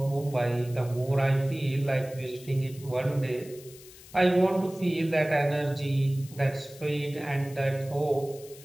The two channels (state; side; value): noise; left; hiss, 20 dB below the sound